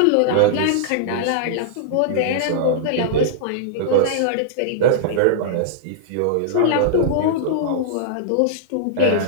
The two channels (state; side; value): different; both; correlation -0.02